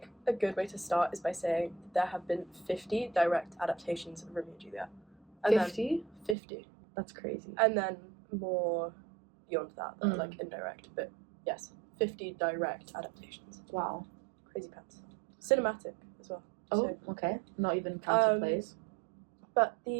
a good way to start is by saying there have been 50 direct adaptations of Romeo and Juliet. And 50? 50. That's crazy. And then more beyond that are like indirect, but yes, 50 direct adaptations. Wow. Crazy pants. Cinematic as well. Oh, so, okay. Not even counting plays. But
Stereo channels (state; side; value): drops out; left; at 6.4 s